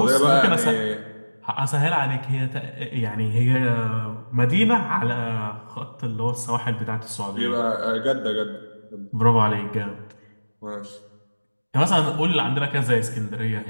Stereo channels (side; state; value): both; inverted; correlation -1.00